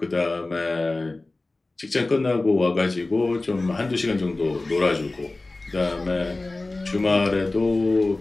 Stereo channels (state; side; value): quieter; right; 3.1 dB